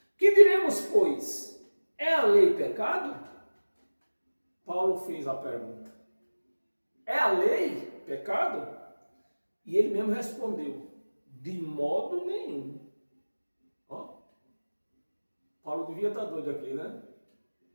Que diremos, pois? É a lei pecado? Paulo fez a pergunta. É a lei pecado? E ele mesmo respondeu, de modo nenhum. Ó, Paulo devia estar doido aqui, né?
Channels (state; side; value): inverted; both; correlation -1.00